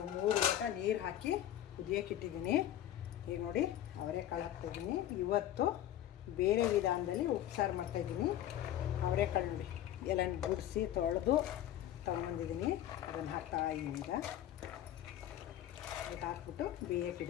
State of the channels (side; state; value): right; quieter; 12.2 dB